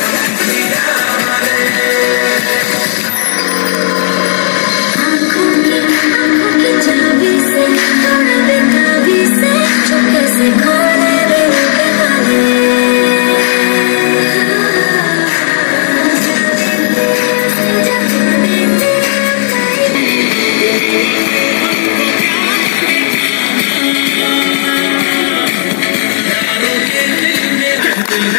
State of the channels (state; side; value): silent; right; digital silence